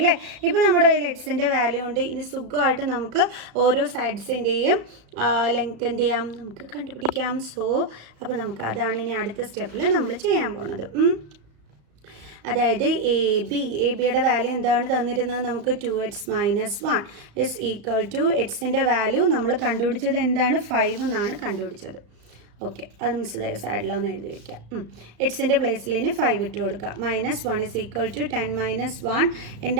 ഇപ്പോൾ നമ്മുടെ കയ്യിൽ എക്സിൻ്റെ വാല്യൂ ഉണ്ട്. ഇനി സുഖമായിട്ട് നമുക്ക് ഓരോ സൈഡ്സിൻ്റെയും ലെങ്ത് എന്ത് ചെയ്യാം, നമുക്ക് കണ്ടുപിടിക്കാം. അപ്പോൾ നമുക്ക് അതാണ് ഇനി അടുത്ത സ്റ്റെപ്പിൽ നമ്മൾ ചെയ്യാൻ പോണത്. അതായത് എ ബിയുടെ വാല്യൂ എന്താണ് തന്നിരുന്നത്, നമുക്ക് 2x - 1 ഇസ് ഈക്വൽ ടു എക്സിൻ്റെ വാല്യൂ നമ്മൾ കണ്ടുപിടിച്ചത് എന്താണ്, 5 എന്നാണ് കണ്ടുപിടിച്ചത്. ഓക്കെ, അത് മിസ് സൈഡിലൊന്ന് എഴുതി വയ്ക്കാം. എക്സിൻ്റെ പ്ലേസിൽ ഇനി 5 ഇട്ട് കൊടുക്കുക. -1 ഇസ് ഈക്വൽ ടു 10 - 1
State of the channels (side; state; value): left; late; 35 ms